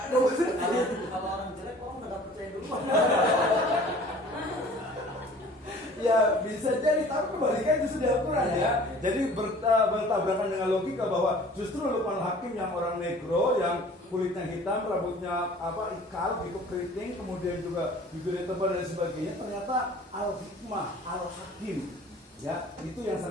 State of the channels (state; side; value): normal; both; correlation 0.48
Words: orang jelek, orang nggak percaya dulu. Ya bisa jadi, tapi kebalikan itu sudah Al-Quran ya. Jadi bertabrakan dengan logika bahwa justru Luqmanul Hakim yang orang negro, yang kulitnya hitam, rambutnya apa ikal gitu, keriting, kemudian juga bibirnya tebal dan sebagainya, ternyata Al-Hikmah, Al-Hakim. Ya, itu yang